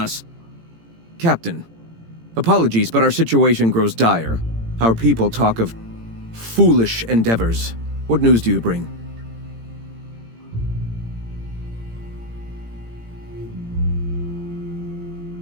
Captain, apologies, but our situation grows dire. Our people talk of foolish endeavors. What news do you bring?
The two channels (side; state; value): left; late; 18 ms